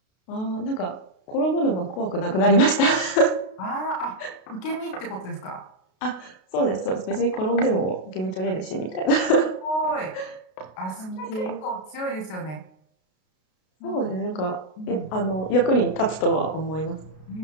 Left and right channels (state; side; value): late; right; 32 ms